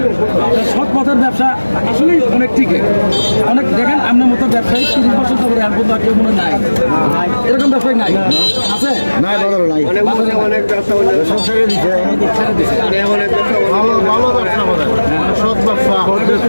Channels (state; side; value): inverted; both; correlation -1.00